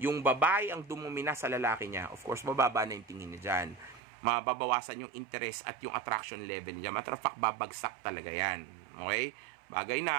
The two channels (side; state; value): left; drops out; at 4.0 s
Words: babae ang dumumina sa lalaki niya, of course, bababa na yung tingin niya dyan. Mababawasan yung interest at yung attraction level niya. Matter of fact, babagsak talaga yan. Okay? Bagay